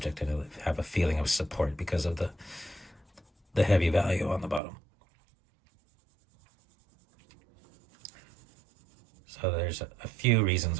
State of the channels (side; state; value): left; drops out; at 4.6 s